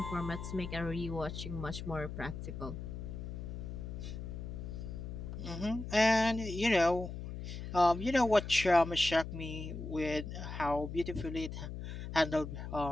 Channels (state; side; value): noise; left; hum, 7 dB below the sound